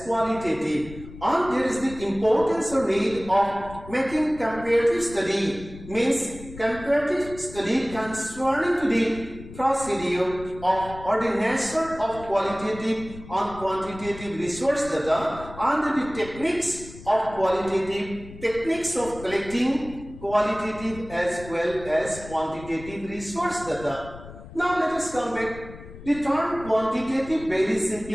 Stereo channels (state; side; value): noise; left; rumble, 16 dB below the sound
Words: qualitative, and there is the importance or need of making comparative study, means comparative study concerning to the procedure of or the nature of qualitative and quantitative resource data, and the techniques of qualitative, techniques of collecting qualitative as well as quantitative resource data. Now let us come back. The term quantitative very